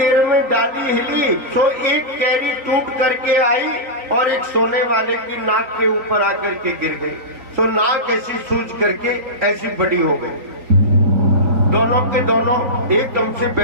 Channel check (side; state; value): left; late; 3.9 ms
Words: में डाली हिली तो एक कैरी टूट करके आई और एक सोने वाले की नाक के ऊपर आकर के गिर गई। तो नाक ऐसी सूज करके ऐसी बड़ी हो गई। दोनों के दोनों एकदम से